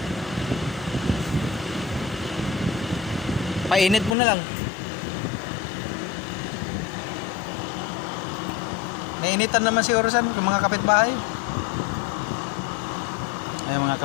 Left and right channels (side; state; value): right; drops out; at 4.2 s